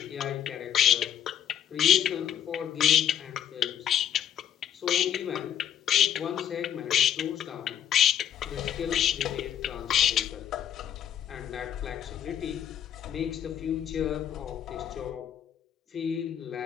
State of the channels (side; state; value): right; quieter; 9.9 dB